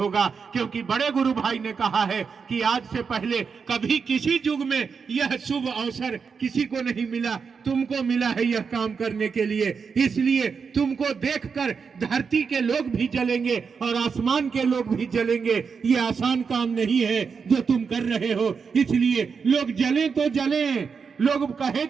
क्योंकि बड़े गुरु भाई ने कहा है कि आज से पहले कभी किसी युग में यह शुभ अवसर किसी को नहीं मिला, तुमको मिला है यह काम करने के लिए। इसलिए तुमको देखकर धरती के लोग भी जलेंगे और आसमान के लोग भी जलेंगे। ये आसान काम नहीं है जो तुम कर रहे हो। इसलिए लोग जले तो जले, लोग कहे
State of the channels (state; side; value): quieter; left; 5.7 dB